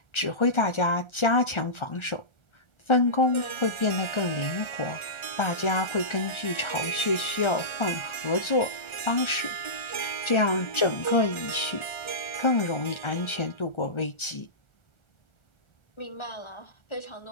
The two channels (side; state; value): right; late; 1.3 ms